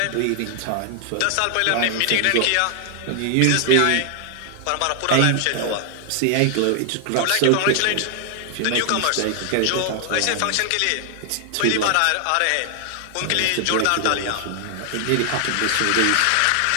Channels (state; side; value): different; both; correlation 0.00